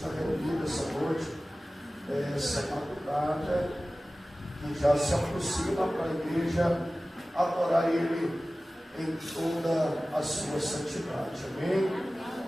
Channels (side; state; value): both; normal; correlation 0.97